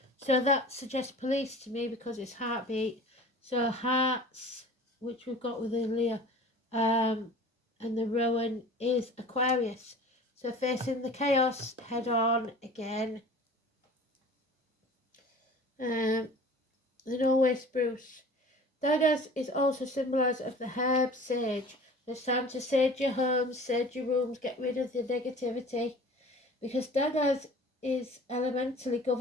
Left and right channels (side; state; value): both; normal; correlation 0.42